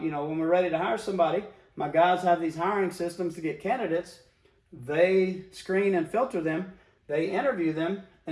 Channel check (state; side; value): identical; both; correlation 1.00